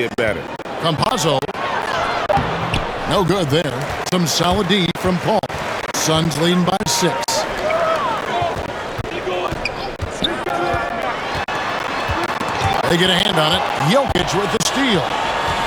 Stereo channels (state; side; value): identical; both; correlation 1.00